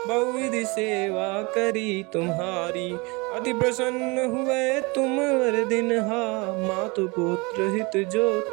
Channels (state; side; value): quieter; left; 27.0 dB